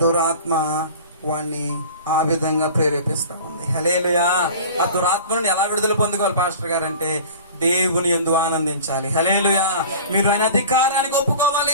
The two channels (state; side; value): inverted; both; correlation -0.40